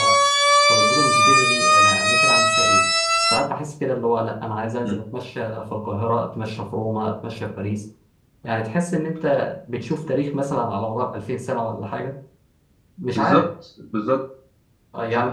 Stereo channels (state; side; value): identical; both; correlation 1.00